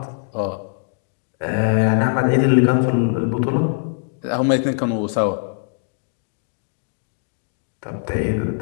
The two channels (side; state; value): right; silent; digital silence